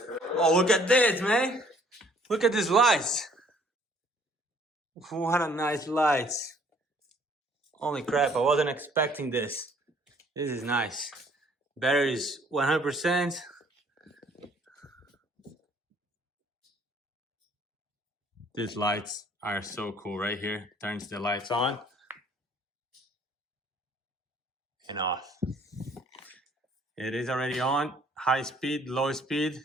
Oh, look at this, man. Look at these lights. What a nice lights. Holy crap, I wasn't expecting this. This is nice. Battery is 100%. These lights are so cool right here. Turns the lights on and off. It is already on. High speed, low speed,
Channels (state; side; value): normal; both; correlation 0.60